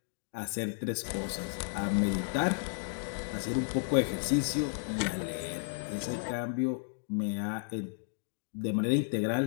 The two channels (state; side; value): silent; right; digital silence